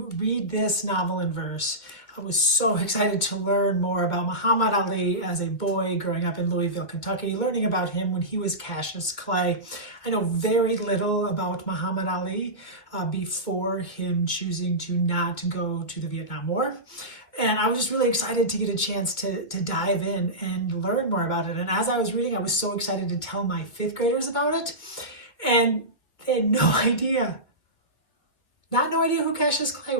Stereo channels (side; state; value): right; late; 2.2 ms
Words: read this novel in verse. I was so excited to learn more about Muhammad Ali as a boy growing up in Louisville, Kentucky, learning about him when he was Cassius Clay. I know very little about Muhammad Ali before him choosing to not go to the Vietnam War. And I was just really excited to get a chance to dive in and learn more about it. And as I was reading, I was so excited to tell my 5th graders about it. And they had no idea, no idea who Cassius Clay